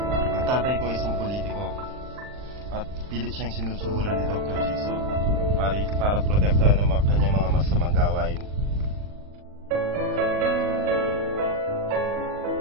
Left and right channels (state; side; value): late; left; 39 ms